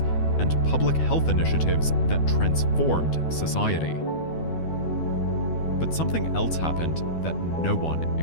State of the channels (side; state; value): right; late; 12 ms